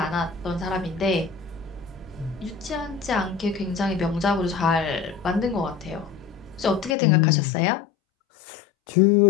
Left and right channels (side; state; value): right; drops out; at 7.0 s